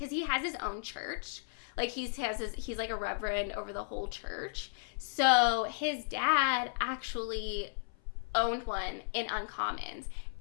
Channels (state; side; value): silent; right; 55 dB below the other